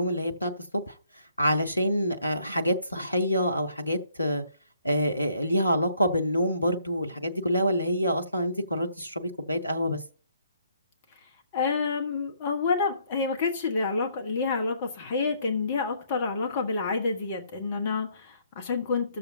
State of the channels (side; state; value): both; inverted; correlation -0.68